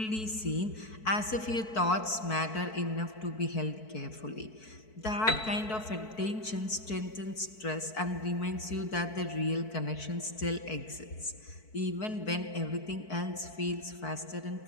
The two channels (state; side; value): late; right; 4.6 ms